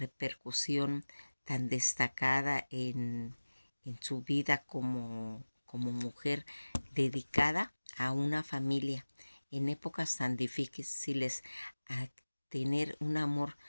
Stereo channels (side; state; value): both; inverted; correlation -1.00